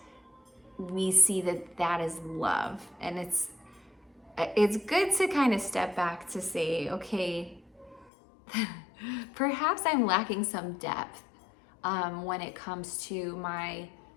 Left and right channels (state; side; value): drops out; right; at 8.1 s